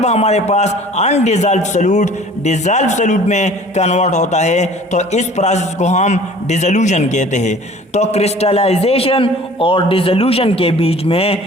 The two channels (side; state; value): both; normal; correlation 0.48